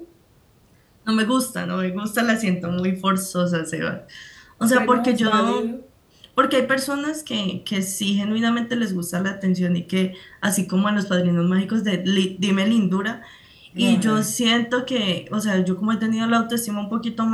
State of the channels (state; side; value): identical; both; correlation 1.00